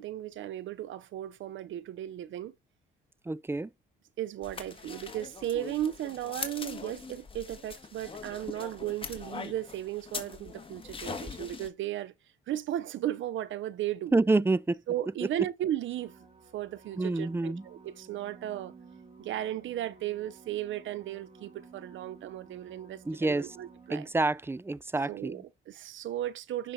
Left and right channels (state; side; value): quieter; left; 5.2 dB